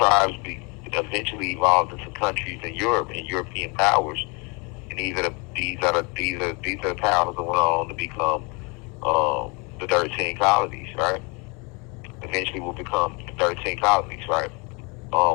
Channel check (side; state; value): right; quieter; 30.6 dB